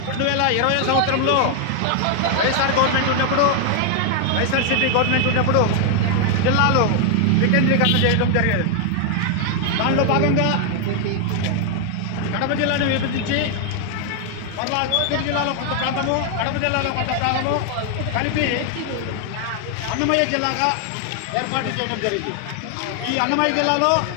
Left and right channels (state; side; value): different; both; correlation 0.00